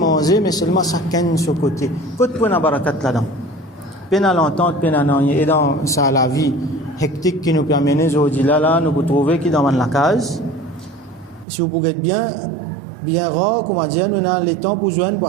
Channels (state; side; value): drops out; left; at 11.5 s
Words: mais seulement chacun de ce côté. Côté pour la barakat là-dedans. Peine à l'entente, peine à n'en et dans ça, la vie hectique qui nous permet aujourd'hui là, nous pouvons trouver qui dans la case. Si vous pouvez être bien rare, comment dire, nous avons le temps pour joindre, pour